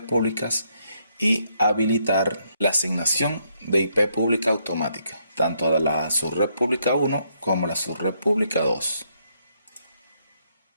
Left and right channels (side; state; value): both; inverted; correlation -0.74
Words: públicas y habilitar la asignación de IP pública automática, tanto de la subred pública 1 como la subred pública 2.